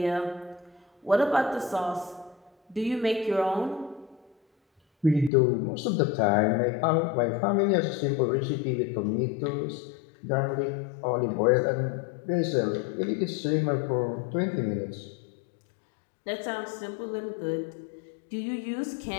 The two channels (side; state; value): right; drops out; at 5.3 s